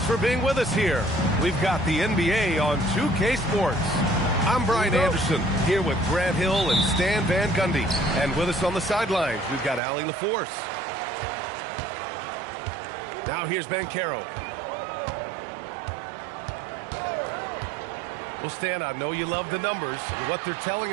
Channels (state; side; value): drops out; left; at 9.8 s